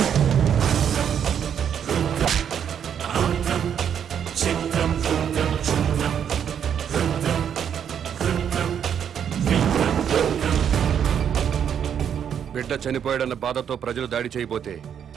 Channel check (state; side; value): quieter; left; 8.5 dB